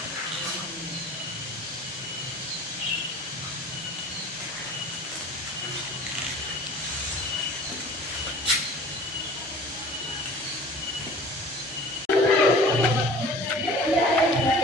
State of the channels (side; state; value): both; normal; correlation 0.45